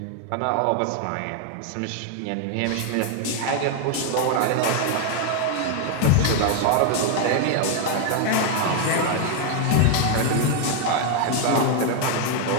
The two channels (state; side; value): different; both; correlation 0.00